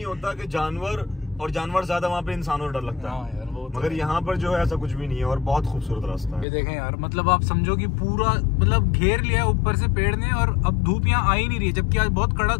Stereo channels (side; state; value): right; drops out; at 6.5 s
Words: होता कि जानवर, और जानवर ज्यादा वहाँ पे इंसानों से डर लगता है। हाँ यार, वो तो मगर यहाँ पर जो है ऐसा कुछ भी नहीं है, और बहुत खूबसूरत रास्ता है। ये देखें यार, मतलब आप समझो कि पूरा मतलब घेर लिया ऊपर से पेड़ ने, और अब धूप यहाँ आ ही नहीं रही है, जबकि आज बहुत